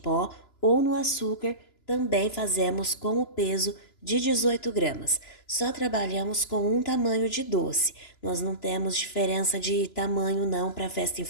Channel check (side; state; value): right; late; 3.0 ms